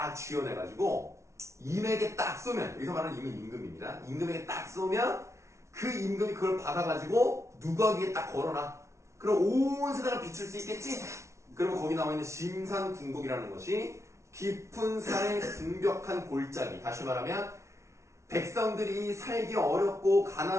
쥐어내가지고 임에게 딱 쏘면, 여기서 말하는 임은 임금입니다. 임금에게 딱 쏘면 그 임금이 그걸 받아가지고 누가 위에 딱 걸어놔. 그럼 온 세상을 비출 수 있겠지? 그러면 거기 나와 있는 심산궁곡이라는 것이 깊은 산의 궁벽한 골짜기. 다시 말하면 백성들이 살기 어렵고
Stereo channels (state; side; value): late; left; 0.14 ms